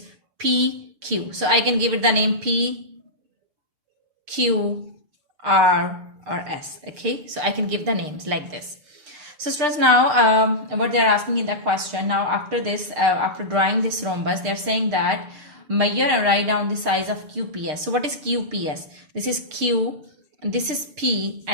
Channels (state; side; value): late; left; 6.6 ms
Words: PQ. So I can give it the name P, Q, R or S. Okay, so I can give the names like this. So students, now what they are asking in the question, now after this, after drawing this rhombus, they are saying that measure and write down the size of QPS. So what is QPS? This is Q, this is P